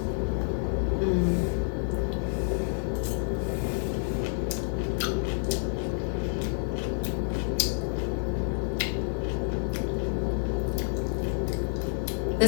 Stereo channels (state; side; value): silent; right; digital silence